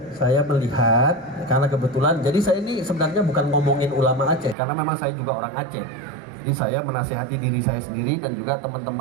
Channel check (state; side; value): drops out; left; at 4.5 s